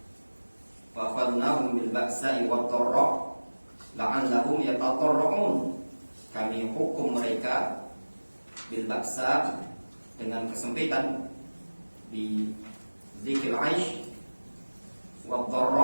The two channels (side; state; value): both; inverted; correlation -1.00